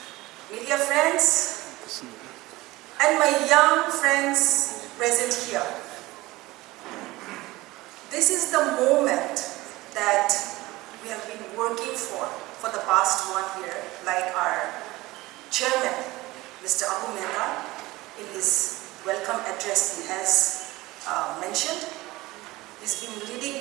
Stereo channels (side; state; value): left; quieter; 19.5 dB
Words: media friends, and my young friends present here. This is the moment that we have been working for the past 1 year, like our chairman, Mr. Abu Mehta, in his welcome address he has mentioned. He's been